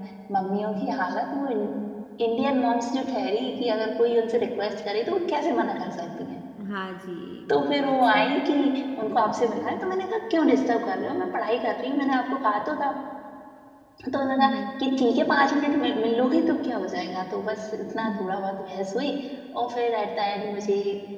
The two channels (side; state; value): both; identical; correlation 1.00